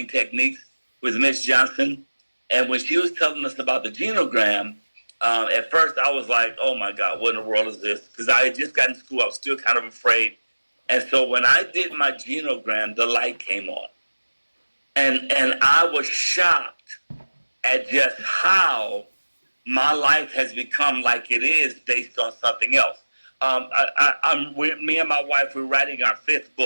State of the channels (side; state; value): both; inverted; correlation -1.00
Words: techniques with Miss Johnson, and when she was telling us about the genogram, at first I was like, "Oh my God, what in the world is this?" Because I had just gotten to school, I was still kind of afraid. And so when I did my genogram, the light came on, and I was shocked at just how my life has become like it is based on something else. Me and my wife, we're writing our fifth